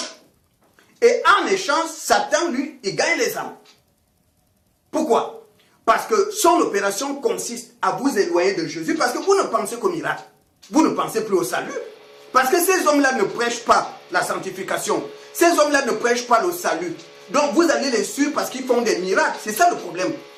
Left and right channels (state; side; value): identical; both; correlation 1.00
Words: Et en échange, Satan, lui, il gagne les âmes. Pourquoi? Parce que son opération consiste à vous éloigner de Jésus. Parce que vous ne pensez qu'au miracle. Vous ne pensez plus au salut. Parce que ces hommes-là ne prêchent pas la sanctification. Ces hommes-là ne prêchent pas le salut. Donc vous allez les suivre parce qu'ils font des miracles. C'est ça le problème.